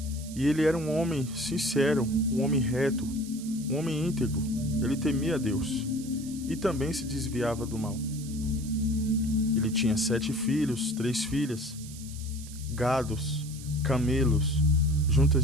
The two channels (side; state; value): right; noise; hiss, 16 dB below the sound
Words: e ele era um homem sincero, um homem reto, um homem íntegro. Ele temia a Deus e também se desviava do mal. Ele tinha 7 filhos, 3 filhas, gados, camelos,